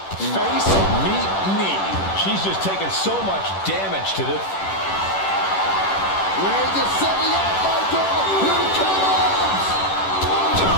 Face, meet, knee. She's just taken so much damage to this. Reigns is setting up, Michael. Here it comes.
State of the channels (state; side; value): late; right; 10 ms